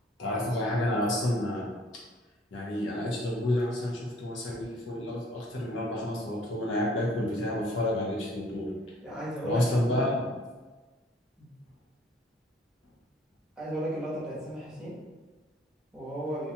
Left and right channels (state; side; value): normal; both; correlation 0.58